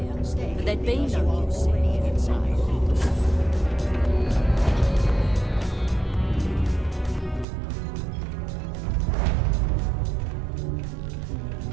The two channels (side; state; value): left; drops out; at 7.5 s